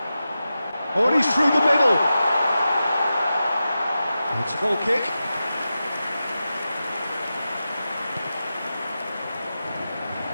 Oh, and he's through the middle. It's a goal kick.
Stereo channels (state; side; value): inverted; both; correlation -0.92